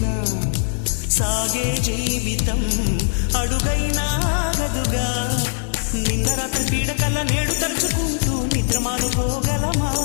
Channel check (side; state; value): right; silent; digital silence